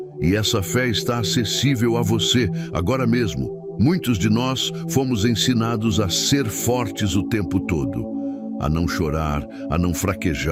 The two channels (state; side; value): identical; both; correlation 1.00